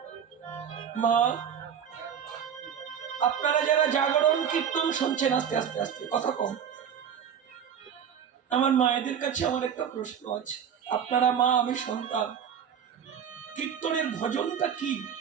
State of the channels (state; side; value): quieter; left; 8.1 dB